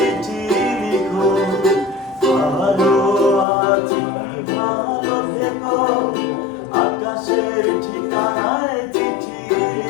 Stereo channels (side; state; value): right; drops out; at 3.5 s